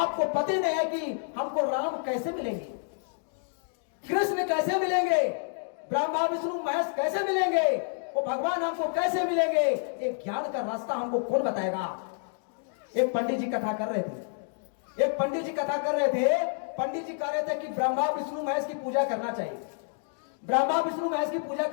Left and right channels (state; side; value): silent; right; digital silence